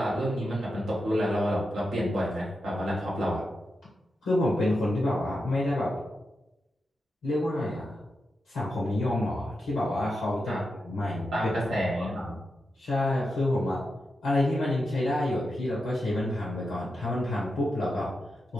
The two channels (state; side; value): normal; both; correlation 0.88